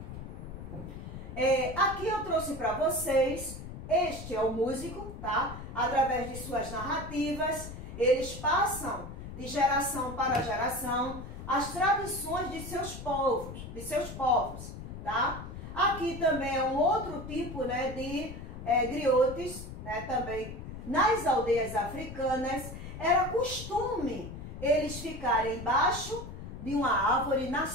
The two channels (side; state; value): left; noise; rumble, 10 dB below the sound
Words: Aqui eu trouxe para vocês, este é o músico, tá? Através de suas narrativas, eles passam de geração para geração as tradições de seus povos, tá? Aqui também é um outro tipo, de griotes, também nas aldeias africanas, era costume eles ficarem embaixo de uma árvore na